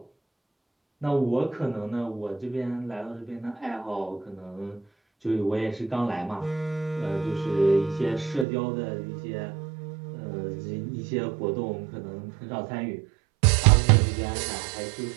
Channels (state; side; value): drops out; left; at 8.5 s